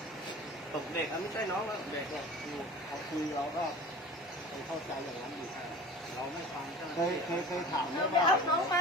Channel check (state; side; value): normal; both; correlation 0.39